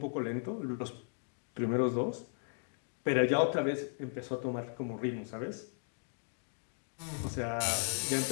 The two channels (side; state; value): right; silent; 54 dB below the other